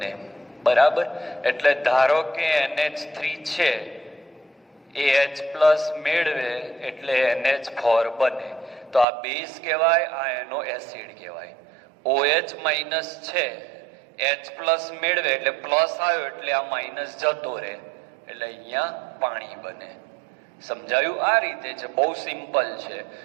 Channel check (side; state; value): left; drops out; at 9.1 s